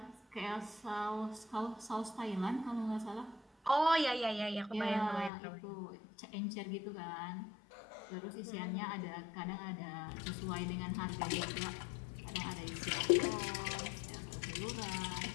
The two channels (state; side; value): drops out; right; at 5.3 s